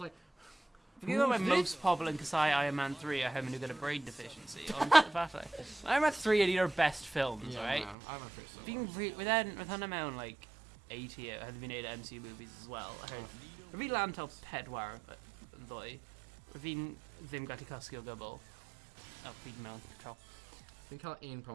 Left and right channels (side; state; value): left; drops out; at 8.0 s